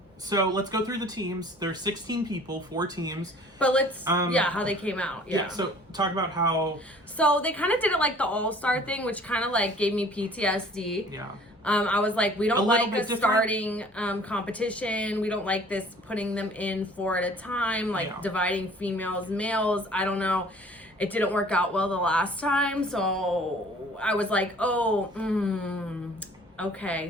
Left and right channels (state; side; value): normal; both; correlation 0.51